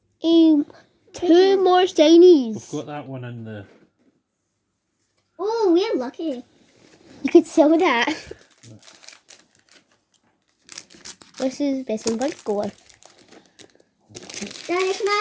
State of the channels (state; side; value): identical; both; correlation 1.00